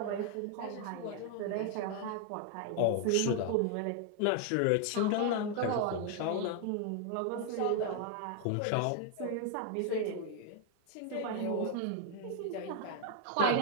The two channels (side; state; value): both; different; correlation 0.00